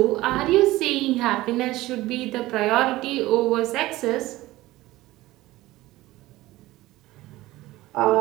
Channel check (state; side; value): quieter; left; 17.6 dB